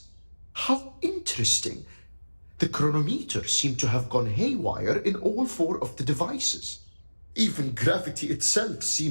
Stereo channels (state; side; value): inverted; both; correlation -1.00